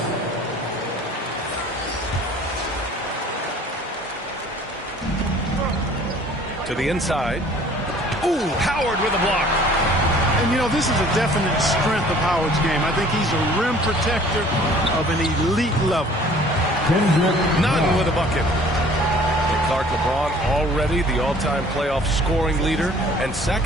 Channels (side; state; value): both; normal; correlation 0.52